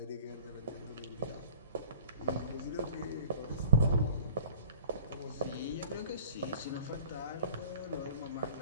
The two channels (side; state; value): both; inverted; correlation -0.46